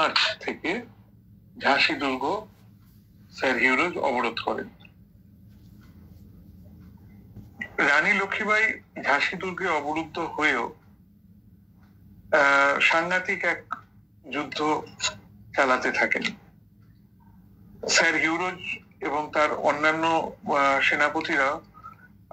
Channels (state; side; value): identical; both; correlation 1.00